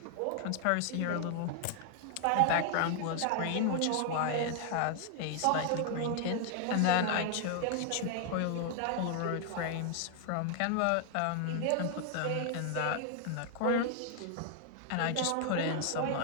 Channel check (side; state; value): both; different; correlation 0.00